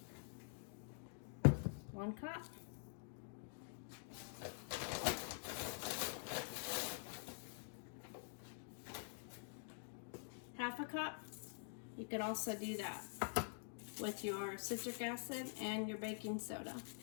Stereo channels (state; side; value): silent; right; digital silence